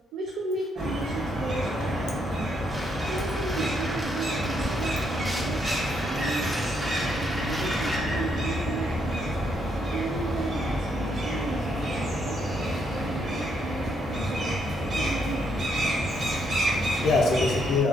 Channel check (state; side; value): normal; both; correlation 0.74